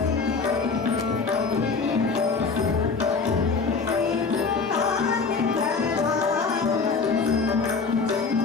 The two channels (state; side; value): quieter; right; 4.6 dB